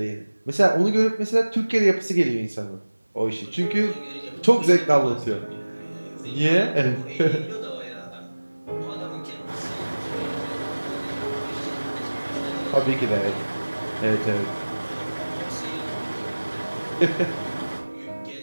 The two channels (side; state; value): both; inverted; correlation -1.00